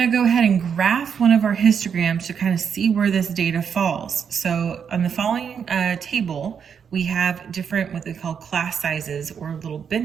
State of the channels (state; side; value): quieter; left; 7.2 dB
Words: go ahead and graph one of our histograms to kind of see where this data falls. So on the following table, we have different what they call class sizes or little